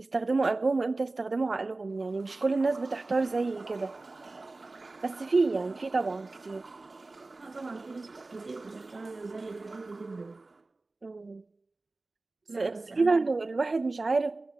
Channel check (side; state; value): left; quieter; 3.3 dB